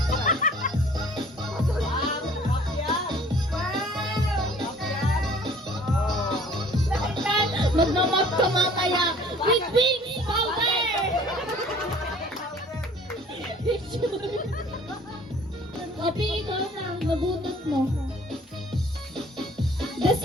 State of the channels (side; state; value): both; normal; correlation 0.52